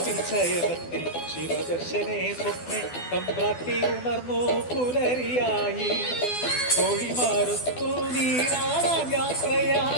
ശയനത്തിൽ ശിവദർശനെ സ്വപ്നെ തമ്പ്രാട്ടി ഉണർന്നു പുലരിയായി തൊഴിമാരത്തു നീരാടാൻ യാത്രയാ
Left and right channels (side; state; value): right; late; 12 ms